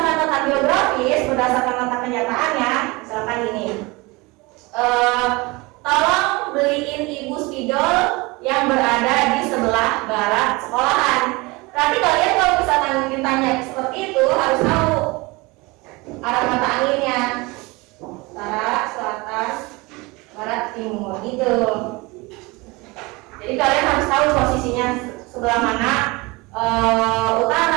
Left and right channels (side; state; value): left; quieter; 24.3 dB